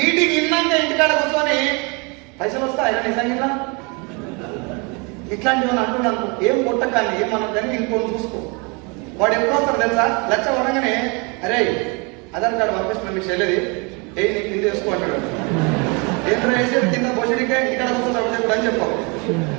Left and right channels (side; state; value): left; quieter; 31.0 dB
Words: ఇన్నాక ఇంటికాడ కూర్చొని పైసలు వస్తాయి నిజంగా ఇట్లాంటివి అంటున్నాను. ఏం కొట్టకాన్ని ఏమన్నా కానీ ఇంకొని చూసుకో. వాడు ఎప్పుడు వస్తారు తెలుసా? లక్ష వరంగానే అరే ఆధార్ కార్డు పంపిస్తున్నా మీకు చెల్లెది నీకు కింద వేసుకో అంటాడు. ఏంటో వేసేది కింద పోషడికే ఇక్కడ కూర్చొని చెప్పు అని చెప్పావు.